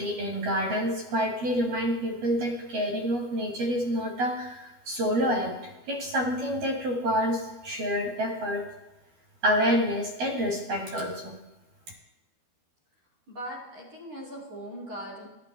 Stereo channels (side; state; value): left; late; 12 ms